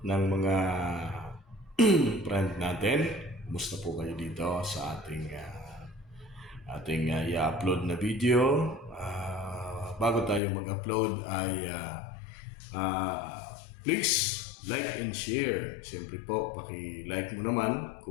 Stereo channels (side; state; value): right; drops out; at 10.4 s